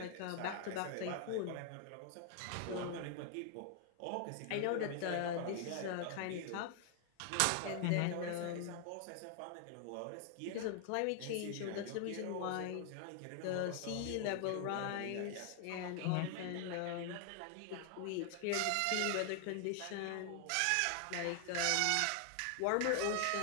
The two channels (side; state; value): both; different; correlation 0.00